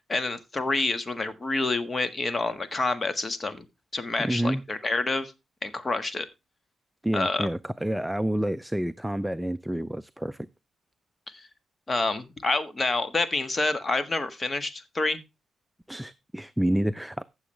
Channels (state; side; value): normal; both; correlation 0.92